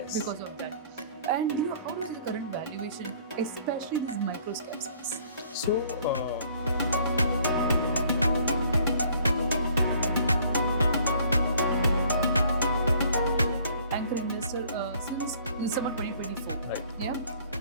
of that. And how do you see the current valuation, especially this microcap space? So, anchor investor since December 2024. Right.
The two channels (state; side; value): inverted; both; correlation -0.58